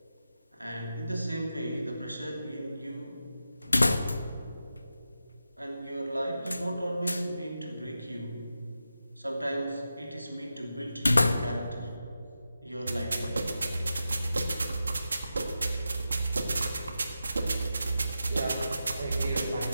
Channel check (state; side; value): inverted; both; correlation -0.90